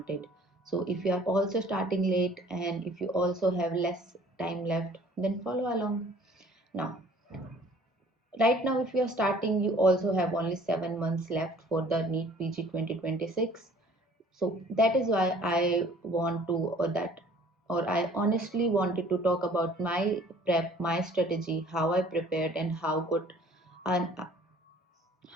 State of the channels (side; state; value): both; normal; correlation 0.53